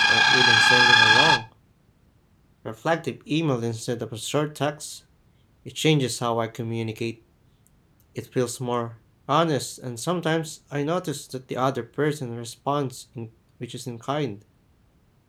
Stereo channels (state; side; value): identical; both; correlation 1.00